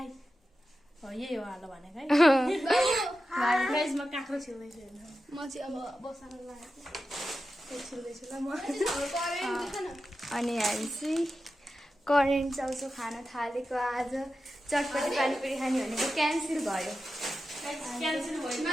यही हो हालो भनेको है। गाइस म काँक्रो छिल्दैछु म चाहिँ अब बसाएर लागेको छिल्दैछु ल म। अनि हामी चाहिँ करेन्ट चाउचाउ खान थालेको। आज चटपटी पानीपुरी खाने भनेको क्यान्सल भयो। क्यान्सल भयो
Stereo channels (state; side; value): normal; both; correlation 0.91